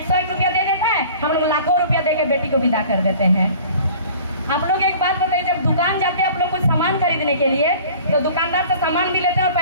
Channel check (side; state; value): both; inverted; correlation -0.46